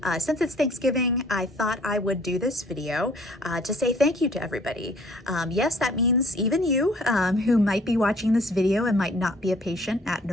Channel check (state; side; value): normal; both; correlation 0.56